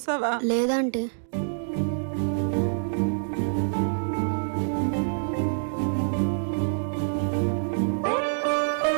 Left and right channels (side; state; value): left; silent; digital silence